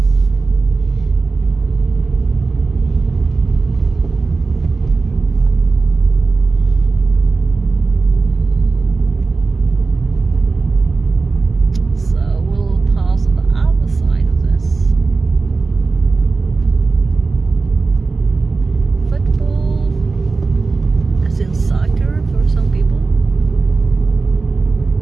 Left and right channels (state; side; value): quieter; left; 4.0 dB